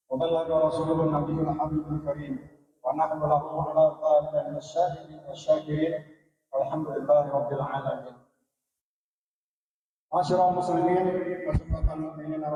wa ballagha rasulun nabiyul habibul karim wa nahnu lahu ala dhalika minasyahidin wasyakirin walhamdulillahi rabbil alamin. Masyarul muslimin wa sunnatul mu'minin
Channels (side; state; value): both; identical; correlation 1.00